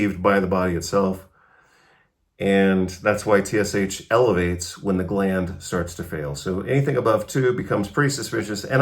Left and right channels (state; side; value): identical; both; correlation 1.00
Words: by the body itself. And that's why TSH elevates when the gland starts to fail. So anything above 2 becomes pretty suspicious.